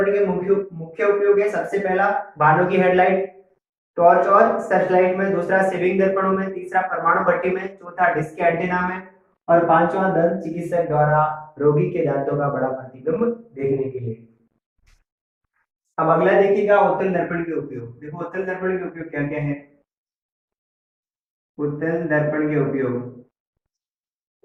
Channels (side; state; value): both; identical; correlation 1.00